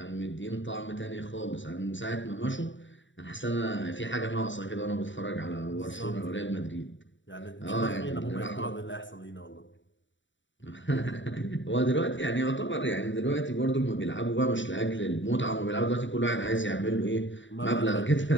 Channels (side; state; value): right; late; 0.55 ms